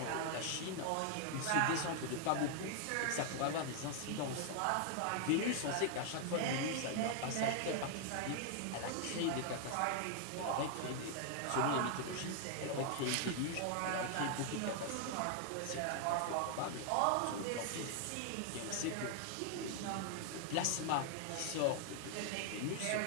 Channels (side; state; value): both; different; correlation 0.00